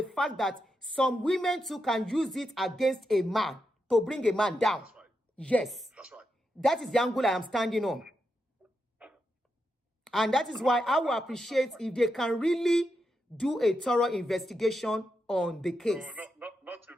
fact that some women too can use it against a man to bring a man down. That's right. Yes. That's right. That is the angle I am standing on. And that is why I will appreciate if they can really do a thorough investigation on the case. No, not if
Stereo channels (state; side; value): normal; both; correlation 0.85